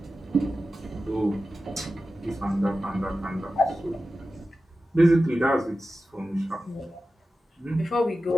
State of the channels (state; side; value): normal; both; correlation 0.93